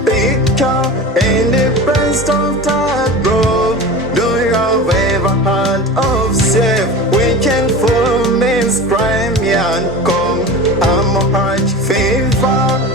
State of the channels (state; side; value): normal; both; correlation 0.32